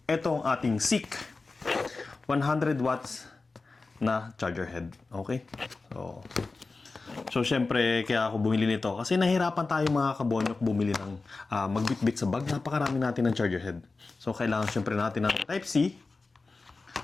Ito ang ating SICK 100 watts na charger head. Okay? So syempre, kaya ako bumili nito. Kasi nahirapan tayo mga kabonyok bumili ng magbitbit sa bag. Napakarami natin ng charger head. So, kailangan syempre natin ng Type-C.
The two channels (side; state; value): right; quieter; 3.8 dB